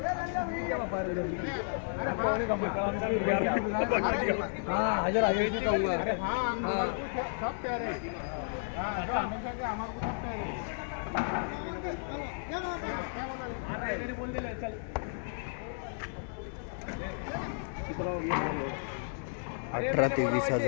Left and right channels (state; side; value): silent; right; digital silence